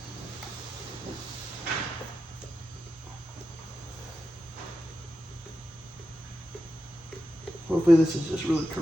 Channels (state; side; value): normal; both; correlation 0.90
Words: Hopefully this is just really